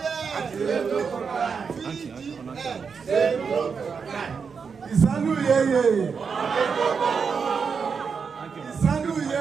Ìsánú yeye ìsánú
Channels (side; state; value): left; quieter; 5.8 dB